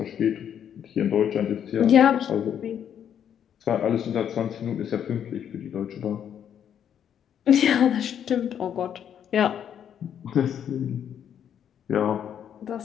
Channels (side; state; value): right; quieter; 9.1 dB